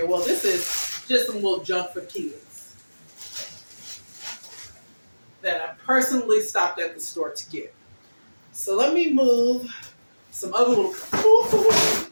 Well, this is just some little junk for kids that I personally stopped at the store to get. So let me move some other little.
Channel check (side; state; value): both; inverted; correlation -1.00